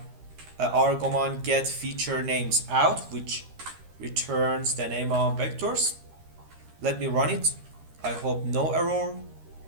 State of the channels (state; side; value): late; left; 13 ms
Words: argument get feature names out, which returns the name of vectors. Let me run it. I hope no error.